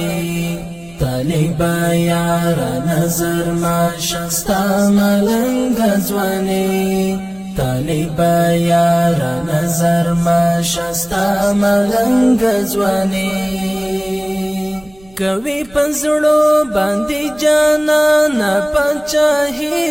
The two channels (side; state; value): right; noise; rumble, 26 dB below the sound